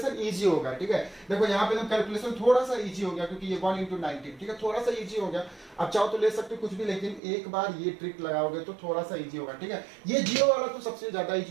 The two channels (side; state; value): left; drops out; at 7.2 s